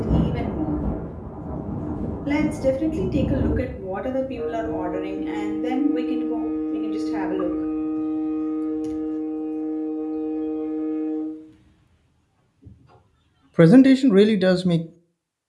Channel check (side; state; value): both; identical; correlation 1.00